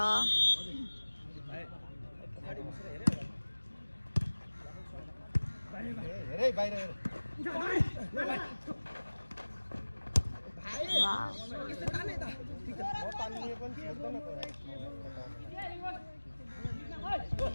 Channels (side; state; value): both; inverted; correlation -1.00